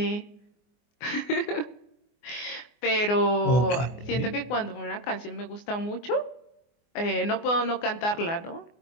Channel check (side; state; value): right; late; 24 ms